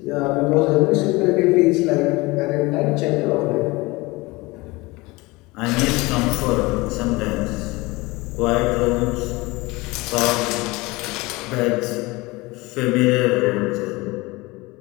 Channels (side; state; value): right; quieter; 22.8 dB